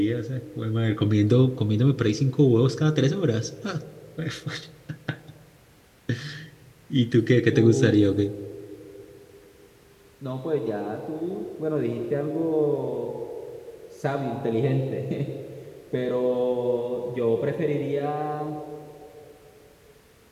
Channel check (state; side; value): identical; both; correlation 1.00